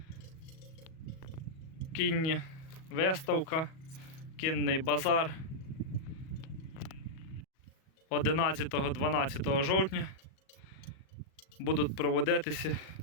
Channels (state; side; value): late; right; 37 ms